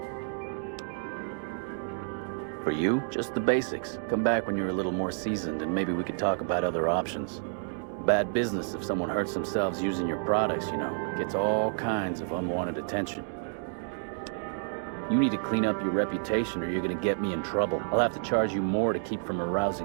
For you? Just the basics. Come back when you're a little more seasoned and maybe we could talk about other options. Bad business if someone hurts themselves using your products, you know. Gets all kinds of unwanted attention. You need to clean up your reputation or you're gonna get me in trouble. I'll have to charge you more to keep from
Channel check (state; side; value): silent; left; digital silence